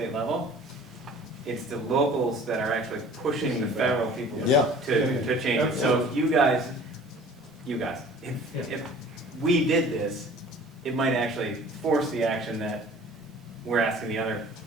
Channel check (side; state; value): both; normal; correlation 0.47